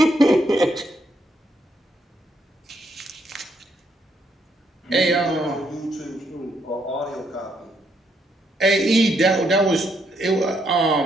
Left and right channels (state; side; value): normal; both; correlation 0.75